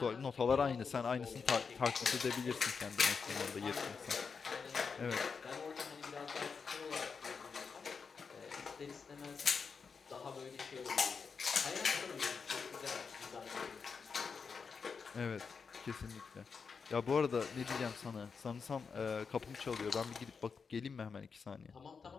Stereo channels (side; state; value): right; quieter; 5.5 dB